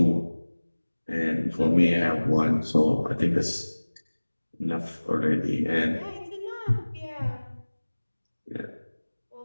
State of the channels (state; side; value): inverted; both; correlation -1.00